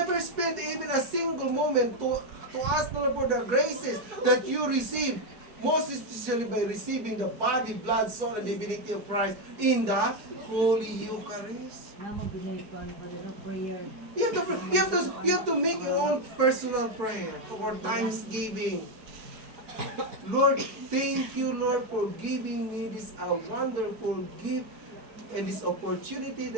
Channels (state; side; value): late; left; 4.7 ms